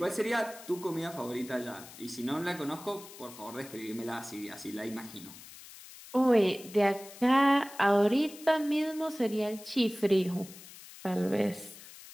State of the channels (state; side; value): noise; left; hiss, 17 dB below the sound